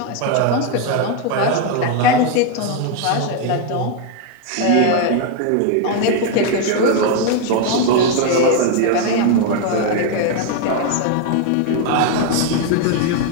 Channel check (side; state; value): both; different; correlation 0.01